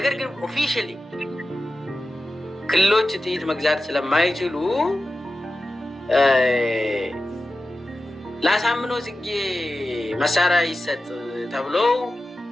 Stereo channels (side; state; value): both; normal; correlation 0.93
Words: ግን ኦፊሻሊ ክልሎች ጥይት መግዛት ስለማይችሉ ለአሳምነው ጽጌ መሳሪያ ይሰጥ ተብሎ